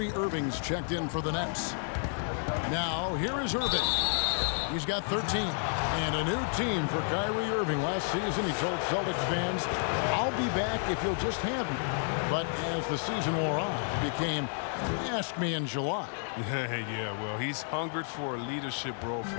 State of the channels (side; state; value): right; silent; 55 dB below the other